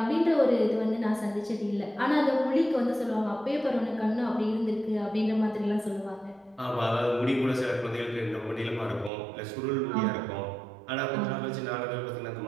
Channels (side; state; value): left; drops out; at 9.1 s